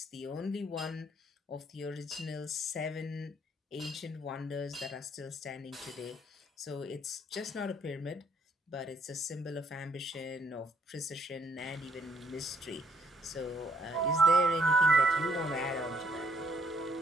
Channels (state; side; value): normal; both; correlation 0.68